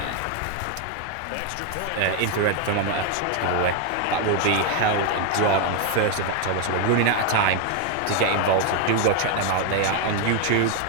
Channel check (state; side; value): different; both; correlation 0.01